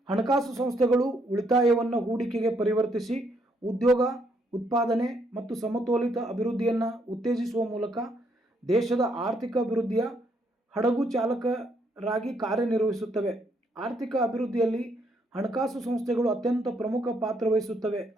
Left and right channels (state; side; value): normal; both; correlation 0.72